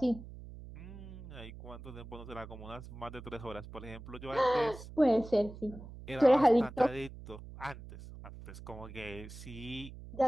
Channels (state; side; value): noise; right; hum, 14 dB below the sound